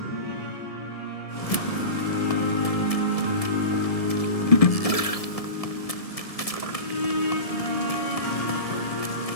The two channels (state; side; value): late; right; 1.7 ms